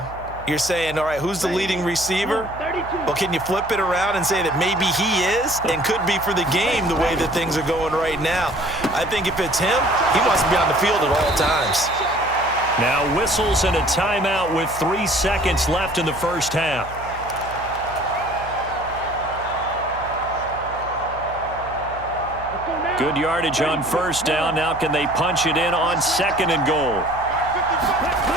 you're saying, all right, who's the leading receiver? Well, can you flip it around and say that maybe he is and could be for the game the way that things are going right now? I think if it's him, he wants to be on the field at all times. Now whistles and a timeout with 3 seconds left in the first half. Good yardage on first down. Now can they punch it in on 2nd and goal?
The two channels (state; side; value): noise; right; hum, 15 dB below the sound